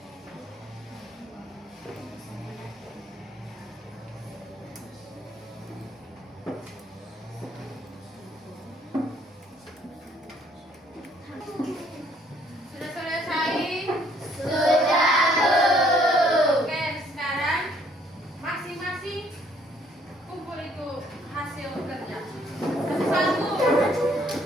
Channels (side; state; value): both; normal; correlation 0.63